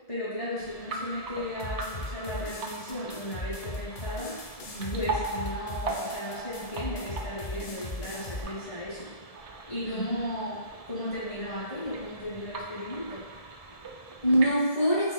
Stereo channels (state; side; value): late; right; 1.7 ms